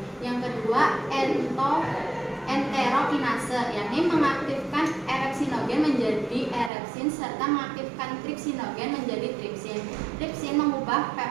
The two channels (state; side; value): drops out; left; at 6.7 s